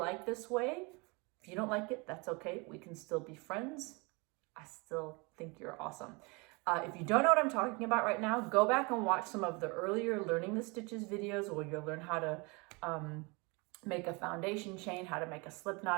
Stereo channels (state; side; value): quieter; left; 28.6 dB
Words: this way. If you don't like it, that's okay. We can still be friends. I still think you're awesome. If you don't know what I'm talking about right now, go back and watch some of the earlier Learning the Stitches videos where you'll learn how to make a foundation chain, how to make a slip